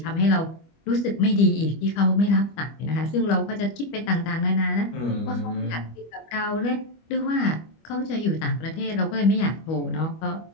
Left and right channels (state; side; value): late; right; 25 ms